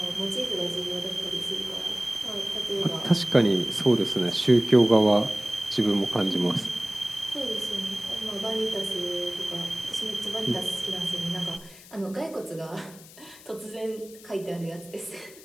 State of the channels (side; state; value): left; noise; hiss, 20 dB below the sound